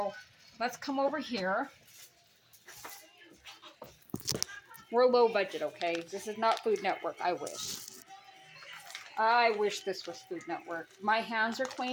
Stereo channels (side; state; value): both; identical; correlation 1.00